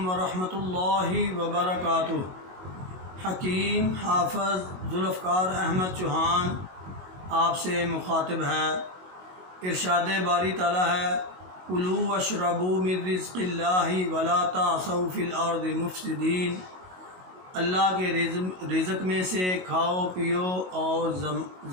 ورحمۃ اللہ وبرکاتہ۔ حکیم حافظ ذوالفقار احمد چوہان آپ سے مخاطب ہے۔ ارشاد باری تعالیٰ ہے، کلوا واشربوا من رزق اللہ ولا تعثوا فی الارض مفسدین۔ اللہ کے رزق میں سے کھاؤ پیو اور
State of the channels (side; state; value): left; late; 22 ms